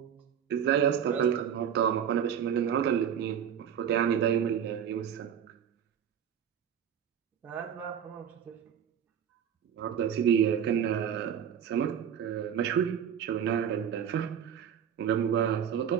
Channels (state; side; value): quieter; left; 8.7 dB